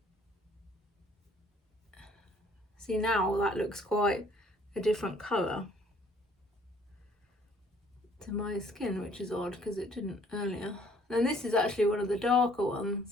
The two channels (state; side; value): normal; both; correlation 0.60